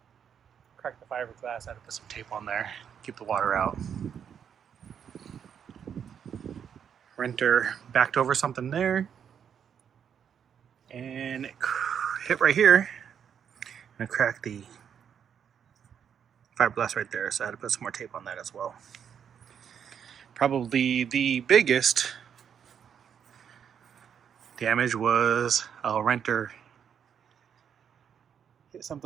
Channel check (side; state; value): left; quieter; 8.0 dB